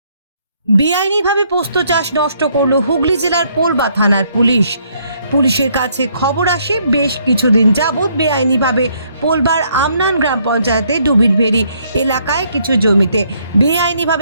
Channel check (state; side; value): inverted; both; correlation -0.69